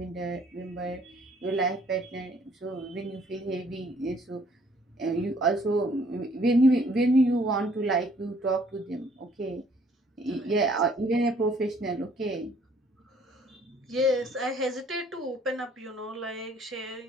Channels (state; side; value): normal; both; correlation 0.61